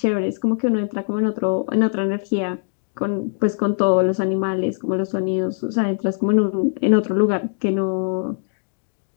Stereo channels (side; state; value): right; silent; digital silence